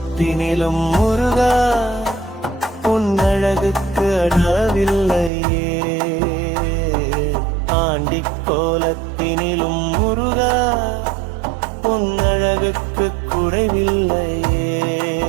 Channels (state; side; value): drops out; left; at 5.3 s